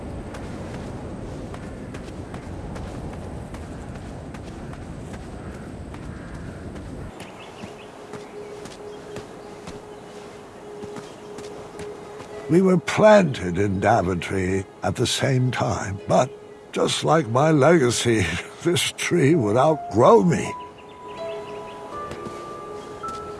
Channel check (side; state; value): both; identical; correlation 1.00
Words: We were planted in Daventry at the same time, but just like my legacy, this tree would outgrow me.